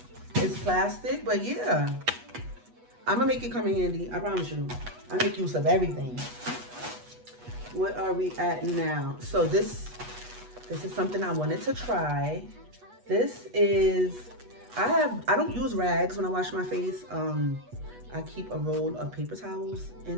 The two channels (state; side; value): late; left; 8.2 ms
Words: It's plastic, but yeah. I'm gonna make it come in handy, I promise you. I make use of everything. What are we at now? So this is something I wanted to try. This is, I don't use rags when I wash my face. I keep a roll of paper towels